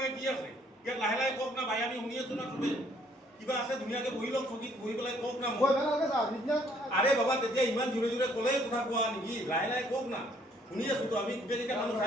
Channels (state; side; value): normal; both; correlation 0.64